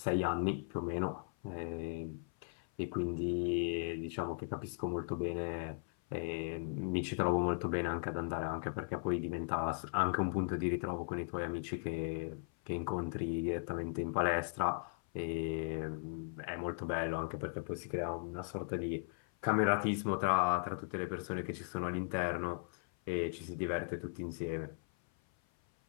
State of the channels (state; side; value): silent; right; 53 dB below the other